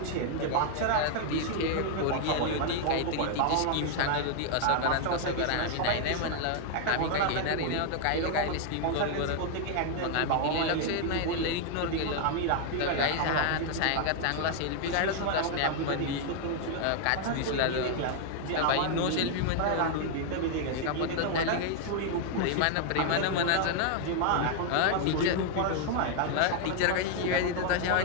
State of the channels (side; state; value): both; different; correlation 0.00